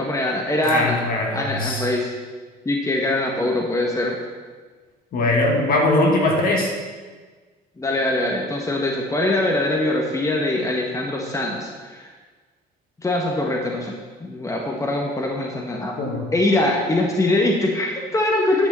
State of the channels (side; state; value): both; normal; correlation 0.49